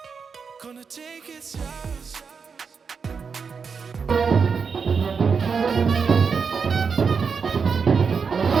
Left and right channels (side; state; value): left; quieter; 5.7 dB